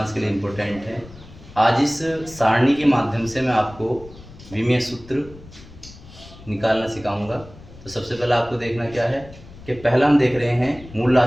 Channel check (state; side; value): noise; left; rumble, 19 dB below the sound